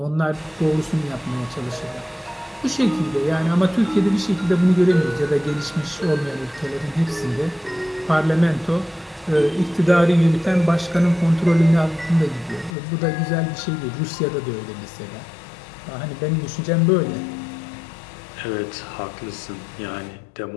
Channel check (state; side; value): drops out; right; at 12.8 s